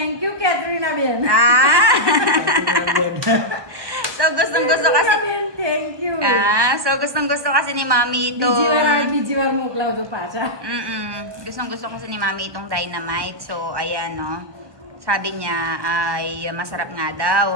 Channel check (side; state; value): left; late; 1.1 ms